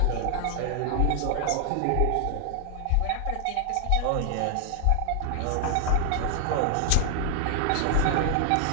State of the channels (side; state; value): both; different; correlation 0.00